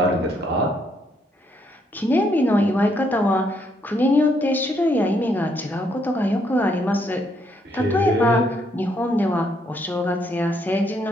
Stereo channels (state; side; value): normal; both; correlation 0.73